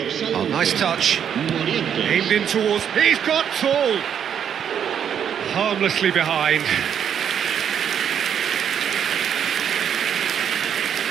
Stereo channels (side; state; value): left; quieter; 8.5 dB